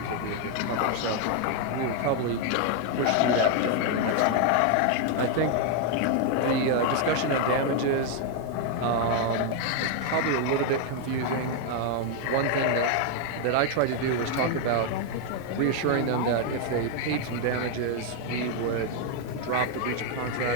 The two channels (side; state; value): both; different; correlation 0.00